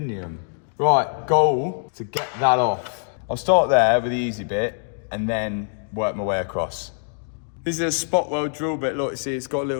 Right, goal to get that off. I'll start there with the easy bit and then work my way across. This is a spot weld drill bit. Look, see, it's got a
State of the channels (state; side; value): silent; right; digital silence